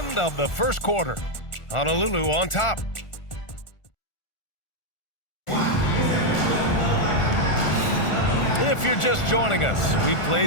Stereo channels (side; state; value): right; late; 1.4 ms